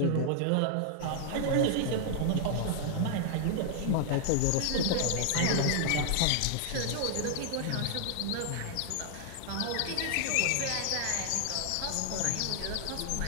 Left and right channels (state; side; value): different; both; correlation 0.00